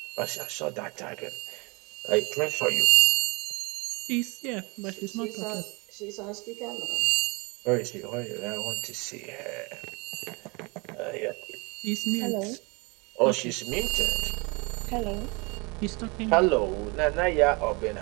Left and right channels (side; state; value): left; quieter; 29.1 dB